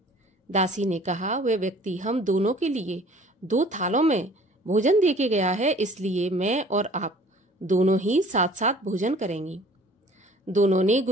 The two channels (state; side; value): normal; both; correlation 0.51